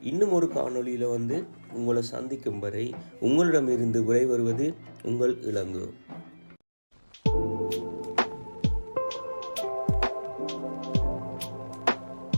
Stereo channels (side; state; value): both; inverted; correlation -1.00